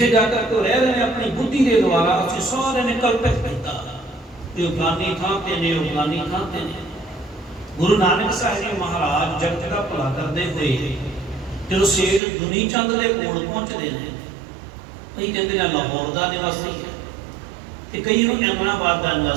जाकर तो रह रहे हैं अपनी बुद्धि के द्वारा असीं सारे ने कल्पित किया कि फलानी थां ते ने, फलानी थां ते ने। गुरु नानक साहिब जी महाराज जगत का भला करते हुए जो सेठ दुनी चंद के कोल पहुँचते हैं, कई कहते हैं लाहौर का निवासी है, तो कई अहमदाबाद का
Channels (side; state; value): left; drops out; at 12.2 s